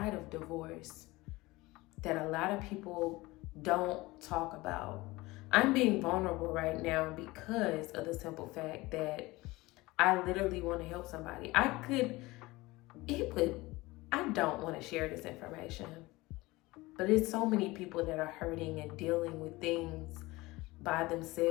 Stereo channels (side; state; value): right; quieter; 20.8 dB